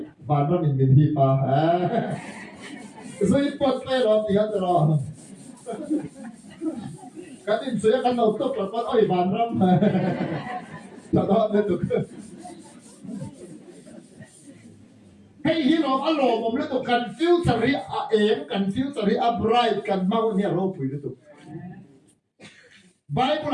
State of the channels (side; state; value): both; identical; correlation 1.00